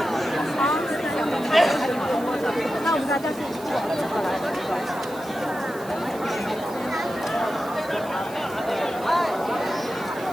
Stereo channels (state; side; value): noise; right; hiss, 19 dB below the sound